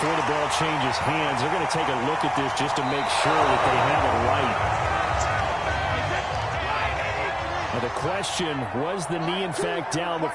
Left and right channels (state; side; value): identical; both; correlation 1.00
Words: the ball changes hands, they're going to take a look at this just to make sure that they have it right. Now the question, was the knee in fact down